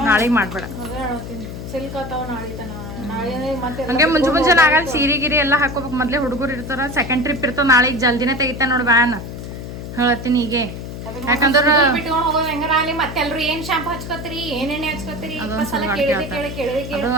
ನಾಳೆಗೆ ಮಾಡ್ಬೇಡ ಅದೇ ಹೇಳ್ತೀನಿ ಸಿಲ್ಕ್ ಆತಾವ ನಾಳೆ ತನ ನಾಳೆ ಮತ್ತೆ ಹಂಗೆ ಮುಂಜಾನೆ ಆಗಲ್ಲ ಸೀರೆ ಗಿರಿ ಎಲ್ಲ ಹಾಕೋಬೇಕು ಮೊದಲೇ ಹುಡುಗರು ಇರ್ತಾರ ಸೆಕೆಂಡ್ ಟ್ರಿಪ್ ಇರ್ತಾವ ನಾಳೆಗೆ ಜಲ್ದಿನೇ ತೆಗಿತಾನೆ ನೋಡಿ ವ್ಯಾನ್ ಹೇಳ್ತೀನಿ ಹೀಗೆ ಯಾಕಂದ್ರೆ ಬಿಟ್ಕೊಂಡು ಹೋಗೋದು ಹೆಂಗಾರ ಅಲ್ಲಿ ಮತ್ತೆಲ್ರು ಏನ್ ಶಾಂಪು ಹಚ್ಕೋತೀರಿ ಏನ್ ಎಣ್ಣೆ ಹಚ್ಕೋತೀರಿ ಅದು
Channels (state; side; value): noise; left; hum, 9 dB below the sound